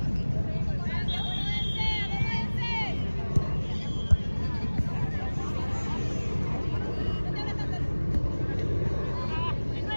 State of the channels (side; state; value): both; inverted; correlation -1.00